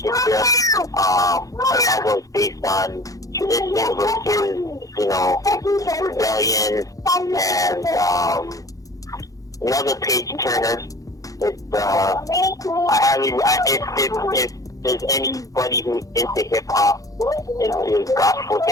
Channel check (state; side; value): late; right; 0.17 ms